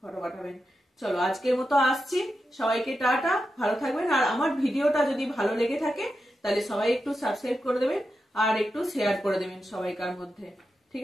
পাঠাবেন। চলো আজকের মতো আসছি, সবাইকে টাটা, ভালো থাকবেন। আর আমার ভিডিওটা যদি ভালো লেগে থাকে তাহলে সবাই একটু সাবস্ক্রাইব করে দেবেন আর একটু শেয়ার করে দেবেন সবাইকার মধ্যে। ঠিক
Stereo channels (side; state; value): both; normal; correlation 0.88